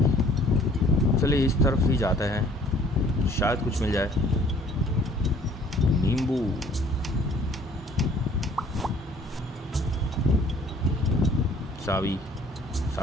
चलिए इस तरफ ही जाते हैं, शायद कुछ मिल जाए। नींबू, सावी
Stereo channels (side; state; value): both; normal; correlation 0.56